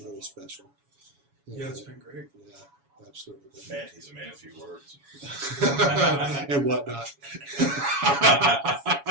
really special. Yeah, it's been great. Yeah, absolutely. Man, he's a man of few words. And whatnot.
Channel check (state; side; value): late; left; 7.1 ms